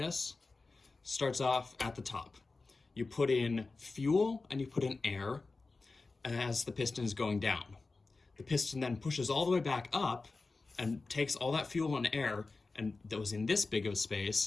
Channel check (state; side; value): quieter; right; 3.8 dB